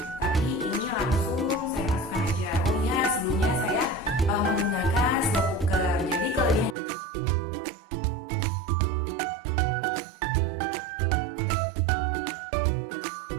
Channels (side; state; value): left; drops out; at 6.8 s